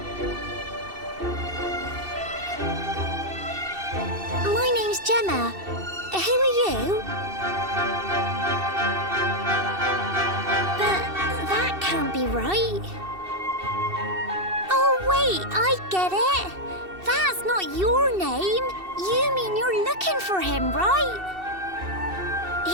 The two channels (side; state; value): left; late; 2.7 ms